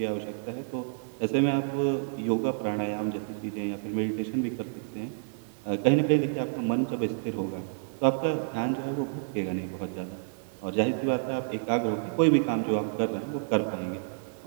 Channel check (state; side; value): silent; left; digital silence